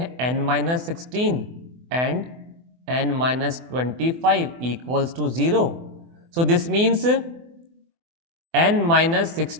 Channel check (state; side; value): late; left; 24 ms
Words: n-16 and n-25 equals to 0। So this means